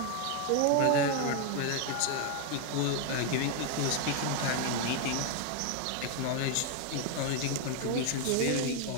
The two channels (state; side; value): different; both; correlation 0.01